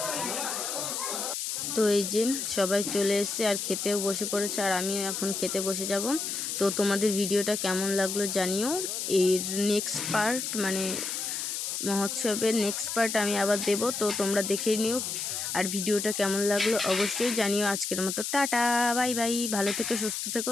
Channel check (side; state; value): left; noise; hiss, 3 dB below the sound